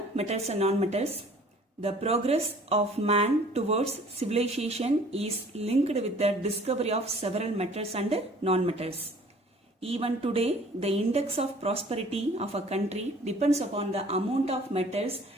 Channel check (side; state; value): both; normal; correlation 0.52